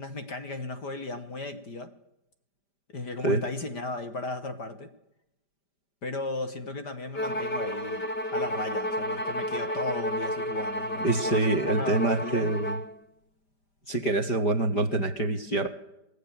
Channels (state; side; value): late; right; 5.1 ms